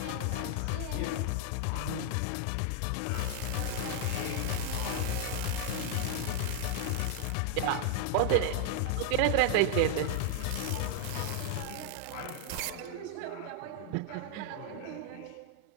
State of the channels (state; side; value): different; both; correlation 0.00